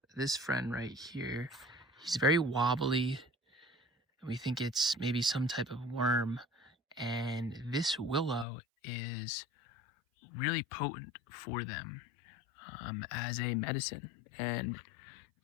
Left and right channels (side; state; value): right; drops out; at 8.5 s